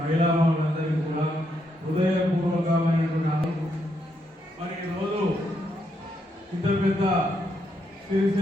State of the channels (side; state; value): both; normal; correlation 0.78